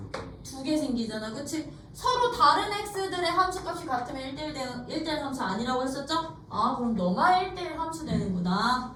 2개 생기잖아. 그치? 서로 다른 x들의 함수값이 같으면 1대1 함수 아니라고 했었죠? 그럼 너만 1대1 함수 되는구나.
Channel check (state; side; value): identical; both; correlation 1.00